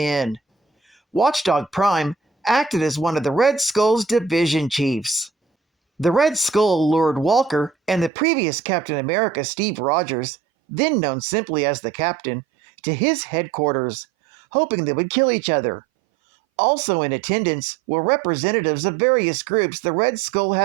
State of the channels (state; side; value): drops out; left; at 8.1 s